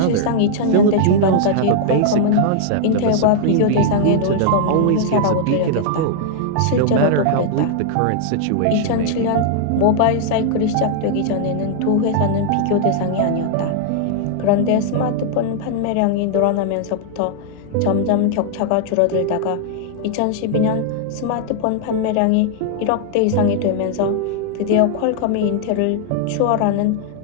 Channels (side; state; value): both; different; correlation -0.01